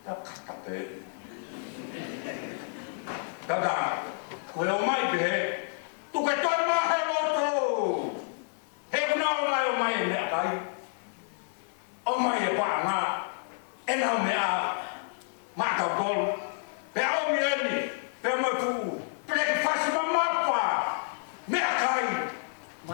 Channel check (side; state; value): right; silent; 58 dB below the other